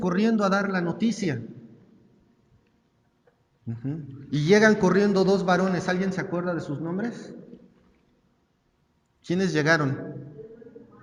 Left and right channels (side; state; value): both; identical; correlation 1.00